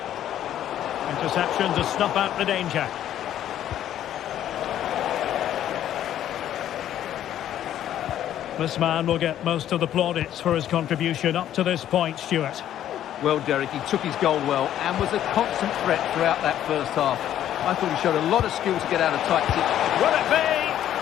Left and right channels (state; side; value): quieter; right; 11.4 dB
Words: Interception to snuff out the danger. This man will get most of the plaudits for his contribution up to this point, Stuart. Well, Derek, he took his goal well and was a constant threat throughout that first half. I thought he showed a lot of skill to get out of tight situations. Will it be?